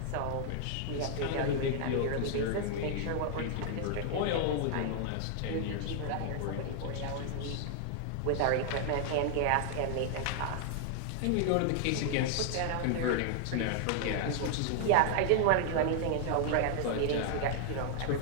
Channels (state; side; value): different; both; correlation 0.00